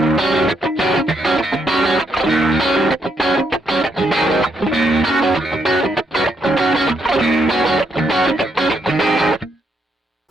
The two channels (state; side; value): normal; both; correlation 0.76